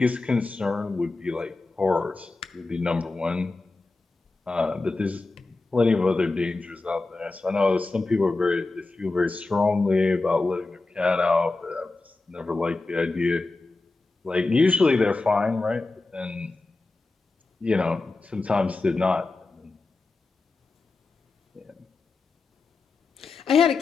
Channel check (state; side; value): quieter; right; 3.5 dB